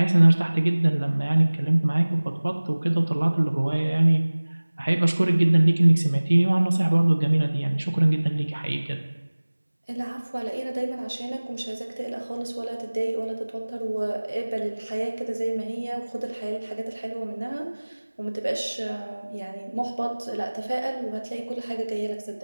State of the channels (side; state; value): both; inverted; correlation -1.00